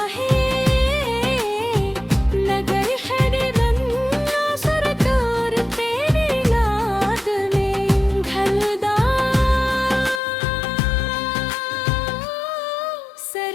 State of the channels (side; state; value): right; drops out; at 10.2 s